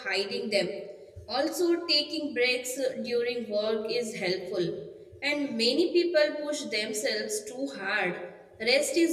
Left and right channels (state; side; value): identical; both; correlation 1.00